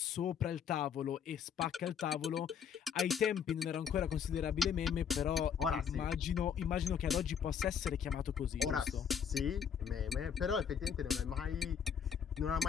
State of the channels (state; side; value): quieter; right; 7.6 dB